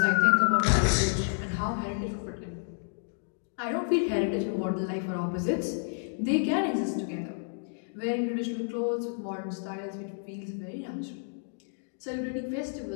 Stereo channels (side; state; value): right; silent; digital silence